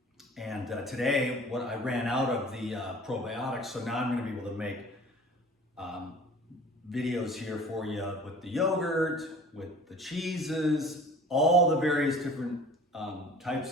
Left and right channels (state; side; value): normal; both; correlation 0.45